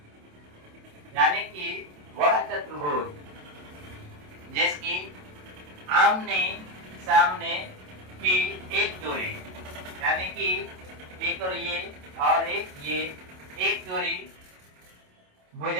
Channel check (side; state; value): left; late; 27 ms